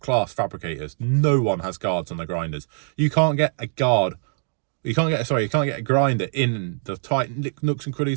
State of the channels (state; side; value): silent; left; digital silence